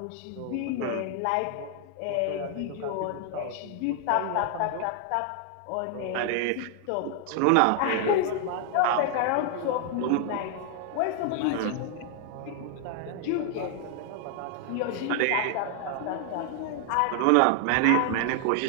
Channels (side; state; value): both; different; correlation 0.00